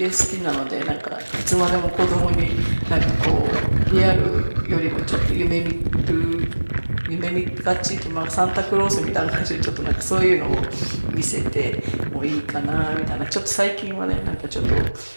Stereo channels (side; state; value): both; inverted; correlation -1.00